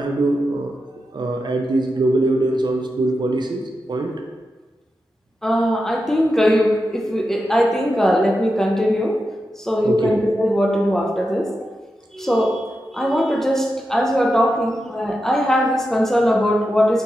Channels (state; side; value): normal; both; correlation 0.89